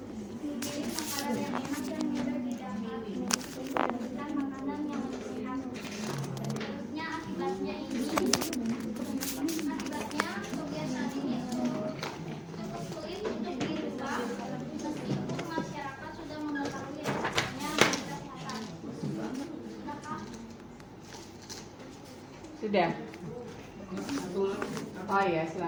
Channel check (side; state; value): both; identical; correlation 1.00